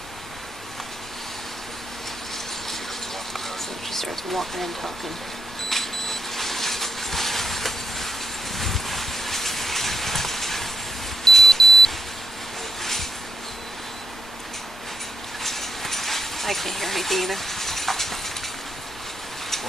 starts walking and talking. I can't hear anything either.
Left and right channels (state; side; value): normal; both; correlation 0.79